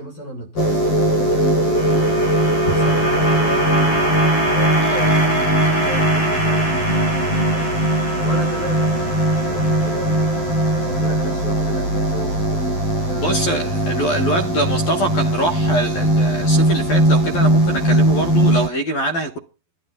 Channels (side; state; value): right; late; 12 ms